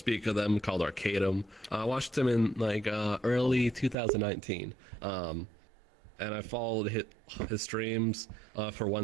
of them. Called Arcadum. I watched him in like early 2019. And I followed his streams for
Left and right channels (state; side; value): drops out; left; at 4.0 s